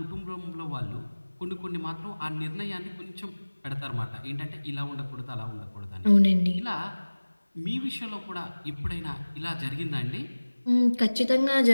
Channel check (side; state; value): both; inverted; correlation -1.00